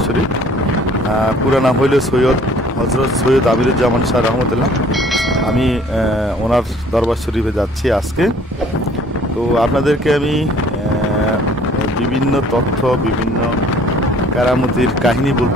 শরীফ। পুরো নাম হইল হজরত সৈয়দ আমিরুজ্জামান শাহ রহমতুল্লাহ। আমি ওনার দরবার শরীফে যাচ্ছি আজকে। তো আপনাদেরকে আমি বিভিন্ন তথ্য, বিভিন্ন কারামতির কাহিনী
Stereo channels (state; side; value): normal; both; correlation 0.55